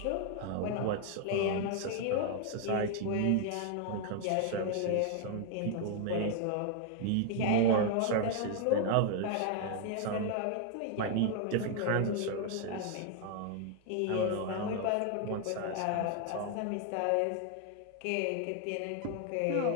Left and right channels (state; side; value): different; both; correlation 0.00